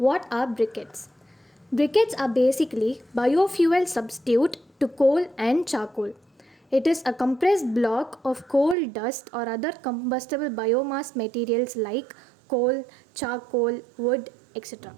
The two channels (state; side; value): drops out; left; at 8.8 s